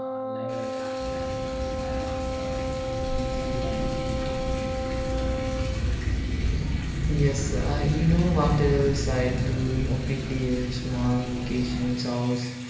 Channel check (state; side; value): identical; both; correlation 1.00